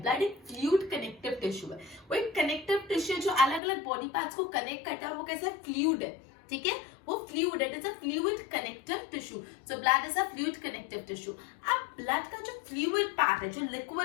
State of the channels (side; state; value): right; drops out; at 3.6 s